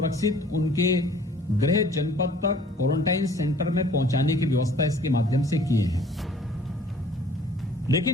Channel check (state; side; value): normal; both; correlation 0.53